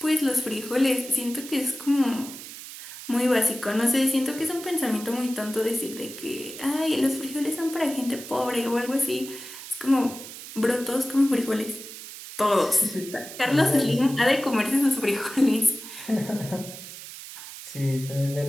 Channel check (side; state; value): right; noise; hiss, 13 dB below the sound